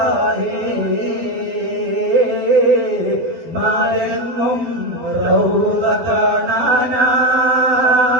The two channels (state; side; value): late; left; 12 ms